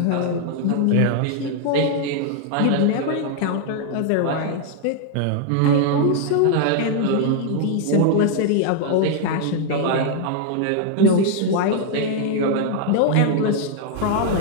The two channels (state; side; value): different; both; correlation 0.00